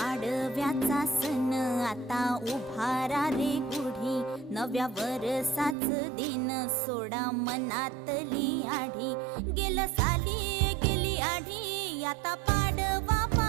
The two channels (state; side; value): drops out; left; at 5.8 s